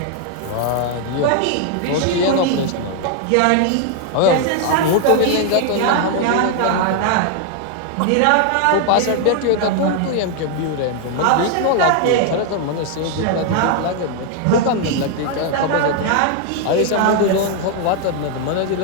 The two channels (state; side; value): different; both; correlation 0.00